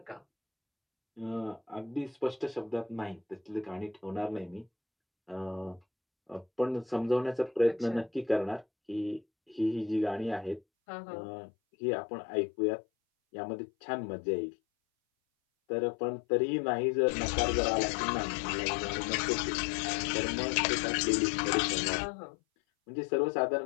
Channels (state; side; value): drops out; right; at 10.6 s